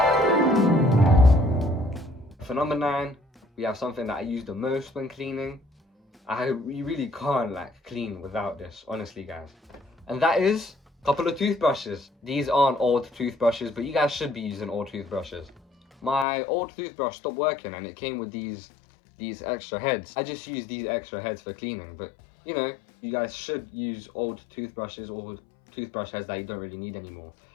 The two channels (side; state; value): right; drops out; at 16.2 s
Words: For number 9, we have something that I use the most when cleaning. You really can't clean without this, honestly guys. And that is a couple of toothbrushes. These aren't old toothbrushes, but you guys should be using old toothbrushes. My old toothbrush stopped working and it came with these extra heads. I just use these extra heads for cleaning, but you guys should use old toothbrushes or toothbrush heads that you don't really need anymore.